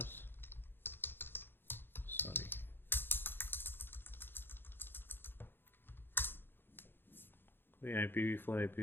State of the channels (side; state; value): right; late; 0.10 ms